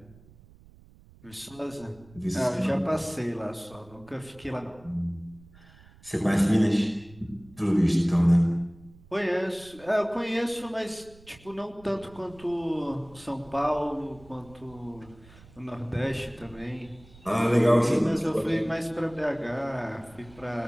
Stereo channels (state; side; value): noise; right; rumble, 24 dB below the sound